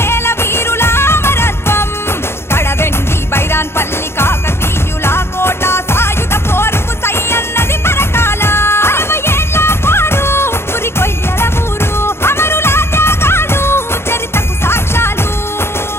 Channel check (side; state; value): right; late; 0.12 ms